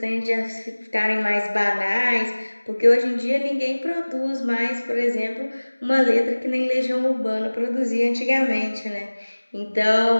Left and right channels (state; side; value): inverted; both; correlation -1.00